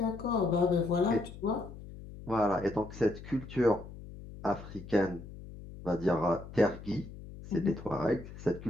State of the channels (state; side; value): noise; left; hum, 14 dB below the sound